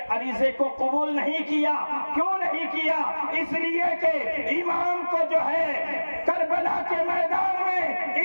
عریضے کو قبول نہیں کیا۔ کیوں نہیں کیا؟ اس لیے کہ امام کو جو ہے کربلا کے میدان میں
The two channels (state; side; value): inverted; both; correlation -1.00